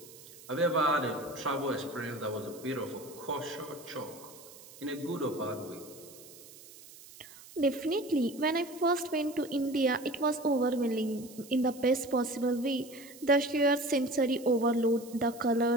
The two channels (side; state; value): right; noise; hiss, 19 dB below the sound